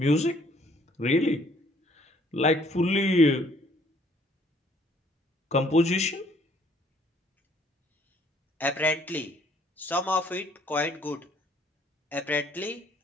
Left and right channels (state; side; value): normal; both; correlation 0.62